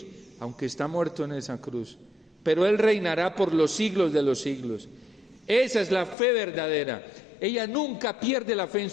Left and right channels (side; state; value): right; drops out; at 6.2 s